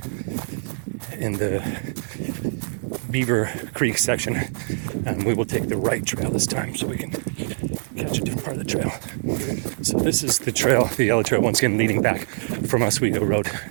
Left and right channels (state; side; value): silent; left; digital silence